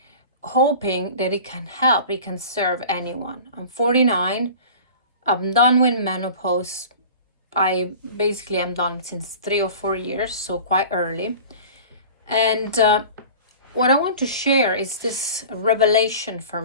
hoping that it can help, it can serve anyone. I'm 49. I'm done with menopause. I basically am done since 3 or 4 years, so quite early. And what I want to share is this revelation for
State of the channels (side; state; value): both; inverted; correlation -0.39